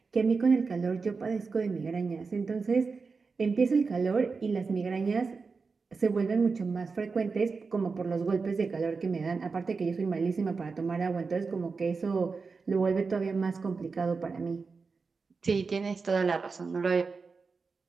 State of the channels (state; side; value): quieter; left; 4.6 dB